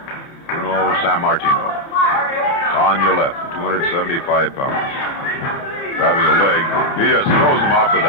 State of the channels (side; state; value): right; late; 30 ms